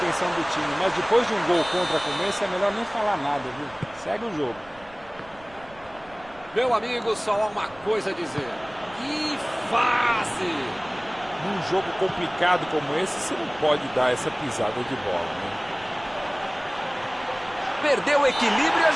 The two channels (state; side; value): noise; right; rumble, 24 dB below the sound